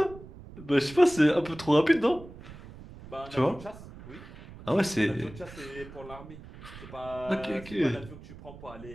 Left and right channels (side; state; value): right; noise; rumble, 16 dB below the sound